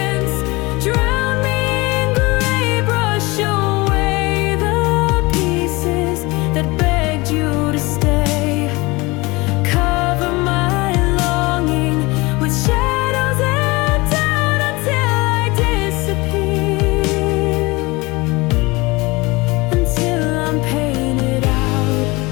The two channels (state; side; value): quieter; right; 23.6 dB